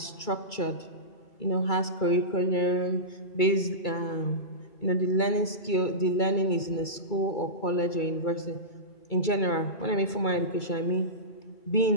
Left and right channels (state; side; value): late; right; 2.3 ms